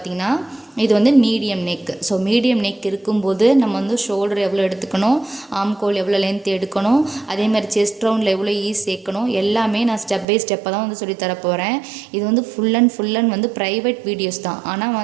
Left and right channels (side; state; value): left; drops out; at 10.2 s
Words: இது medium neck. So medium neck இருக்கும்போது நம்ம ஷோல்டர் எவ்வளோ எடுத்துக்கணும், ஆம்கோல் எவ்வளோ லென்த் எடுக்கணும், அதே மாதிரி செஸ்ட் ரவுண்டில் எவ்வளோ ஈஸ் சேர்க்கணும், எல்லாமே நான் ஸ்டெப் பை ஸ்டெப்பாக தான் சொல்லித்தர போகிறேன். இது ஃபுல் அண்ட் ப்ரைவேட் வீடியோஸ் தான்.